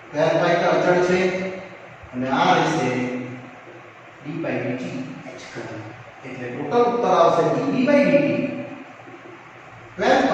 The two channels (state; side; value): identical; both; correlation 1.00